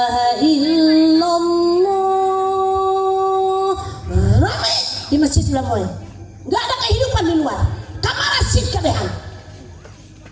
illallah, ramai di masjid Lamoy. Nggak ada kehidupan di luar. Kamar asyik kabehan.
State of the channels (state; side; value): identical; both; correlation 1.00